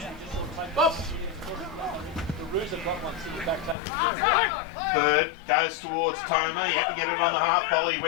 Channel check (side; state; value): right; drops out; at 3.8 s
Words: Bird goes towards Toma. He had to get it on the half volley. He